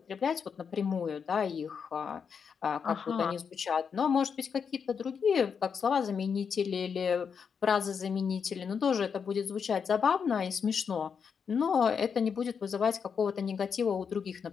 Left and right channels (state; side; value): quieter; right; 6.5 dB